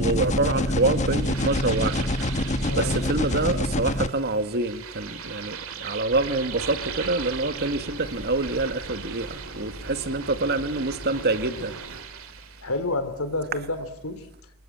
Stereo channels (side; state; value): both; normal; correlation 0.09